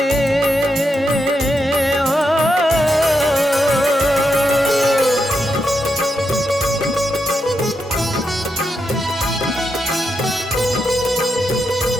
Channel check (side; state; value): both; normal; correlation 0.84